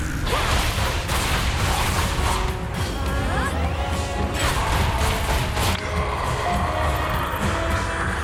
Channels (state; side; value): identical; both; correlation 1.00